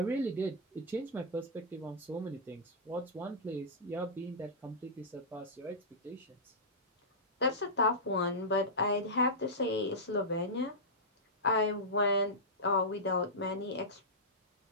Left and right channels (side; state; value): both; normal; correlation -0.12